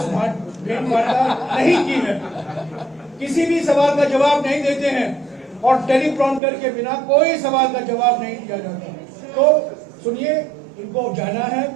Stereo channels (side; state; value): left; drops out; at 6.4 s